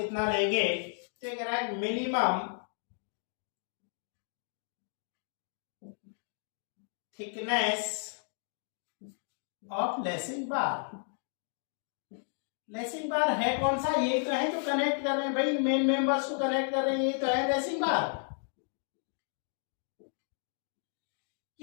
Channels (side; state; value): right; silent; 56 dB below the other